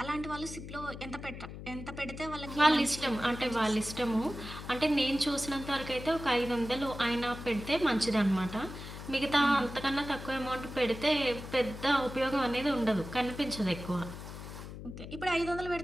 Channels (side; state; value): left; noise; hum, 11 dB below the sound